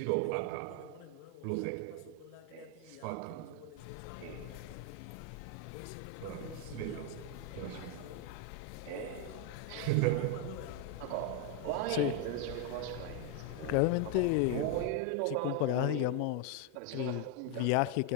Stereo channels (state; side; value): different; both; correlation 0.01